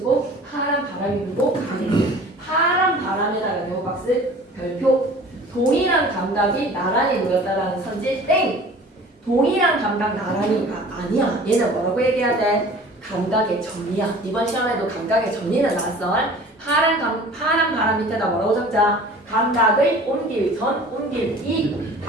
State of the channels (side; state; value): both; normal; correlation 0.45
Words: 파란 바람이 불고 가을이. 파란 바람에다가 네오박스 별표. 동일한 감각이 나란히 모였다라는 선지 땡. 동일한 감각 나란히가 아니야. 얘는 뭐라고 얘기해야 돼? 감각의 전이야. 이번 시험에도 감각의 전이는 나왔어. 파란 바람 밑에다 뭐라고 적자? 감각을 옮길 전, 옮길 이.